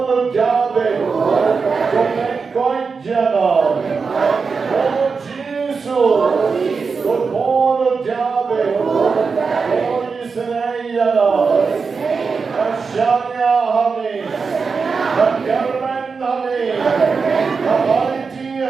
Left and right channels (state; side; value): quieter; left; 5.0 dB